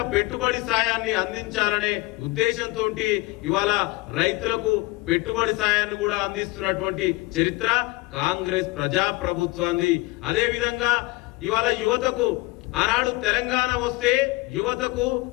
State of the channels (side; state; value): right; quieter; 22.3 dB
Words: పెట్టుబడి సాయాన్ని అందించాలనే ఉద్దేశంతో ఇవాళ రైతులకు పెట్టుబడి సాయాన్ని కూడా అందిస్తున్నటువంటి చరిత్ర కాంగ్రెస్ ప్రజా ప్రభుత్వాన్ని। అదే విధంగా ఇవాళ యువతకు ఆనాడు తెలంగాణ వస్తే యువతకు